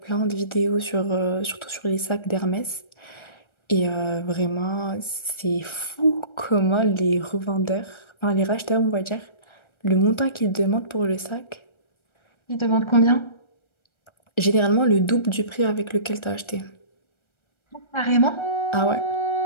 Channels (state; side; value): late; right; 1.3 ms